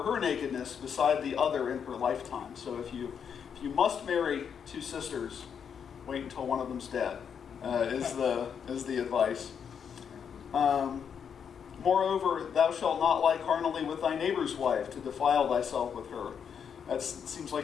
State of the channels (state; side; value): quieter; right; 7.4 dB